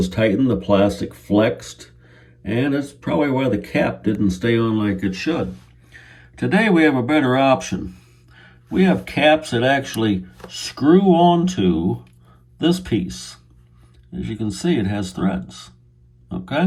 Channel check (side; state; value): both; identical; correlation 1.00